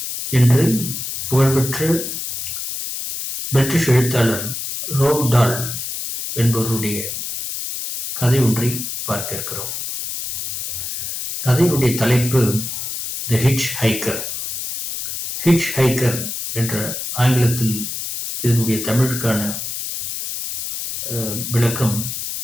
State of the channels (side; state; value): left; noise; hiss, 5 dB below the sound